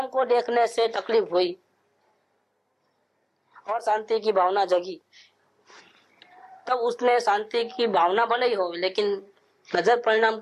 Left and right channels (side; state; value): both; identical; correlation 1.00